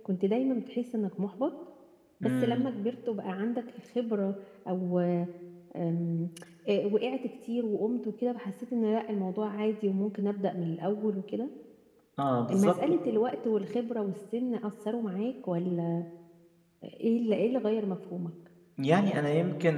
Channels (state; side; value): identical; both; correlation 1.00